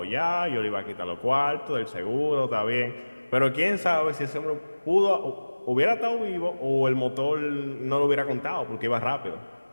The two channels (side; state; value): both; inverted; correlation -1.00